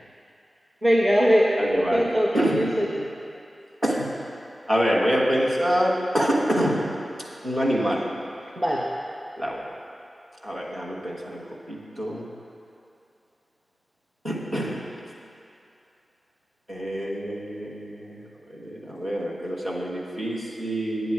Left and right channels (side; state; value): both; normal; correlation 0.94